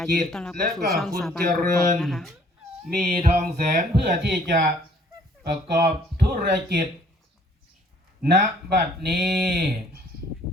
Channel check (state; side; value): normal; both; correlation 0.59